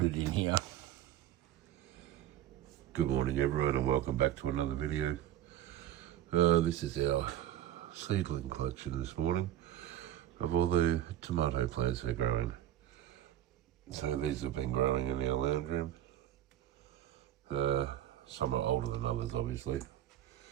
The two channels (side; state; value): left; quieter; 12.2 dB